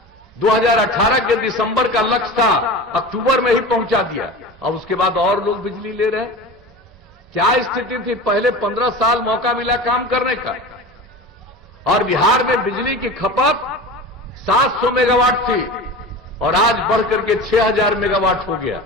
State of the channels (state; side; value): normal; both; correlation 0.32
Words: 2018 के दिसंबर का लक्ष्य था, अक्टूबर में ही पहुंचा दिया। अब उसके बाद और लोग बिजली ले रहे हैं। क्या स्थिति थी? पहले 15 साल मौका मिला काम करने का, और बिहार में बिजली की खपत 700 मेगावाट थी और आज बढ़कर के 6000 मेगावाट हो गया।